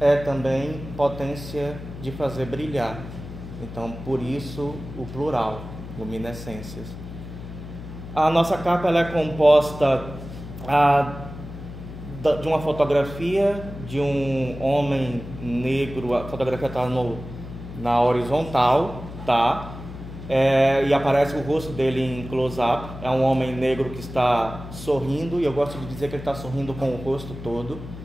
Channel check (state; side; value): noise; left; hum, 12 dB below the sound